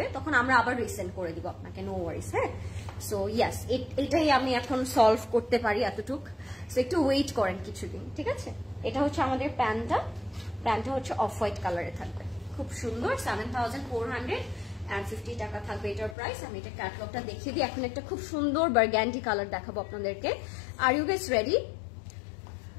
তখন আমরা আবার রিসেন্ড করে দিব আপনাকে, নো ওয়ারিস। হ্যাঁ, সো ইয়াস, এটাই আমি এখন সলভ করতে পারি এতটুক। সো একটু ওয়েট করেন কিছুদিন, ঠিক আছে? এটা হচ্ছে আমাদের প্যান্টটা হচ্ছে অফ হোয়াইট কালারে থাকবে, খুব সুন্দর। 7,450 টাকা থাকবে এটার প্রাইস। আমি এটা ক্যাটালগটা দেখিয়ে দিই। এখন একটা খুব সুন্দর বার্গ্যান্ডি কালার দেখাবো আপনাদেরকে। Are you guys ready?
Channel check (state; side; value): drops out; right; at 16.2 s